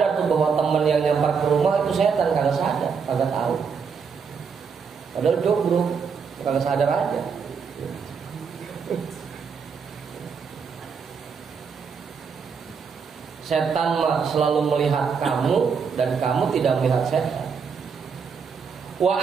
tuh bahwa teman yang nyamper ke rumah itu setan, kagak sadar, kagak tahu. Padahal jomblo, kagak sadar aja. Setan mah selalu melihat kamu dan kamu tidak melihat setan. Wa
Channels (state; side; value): quieter; left; 6.0 dB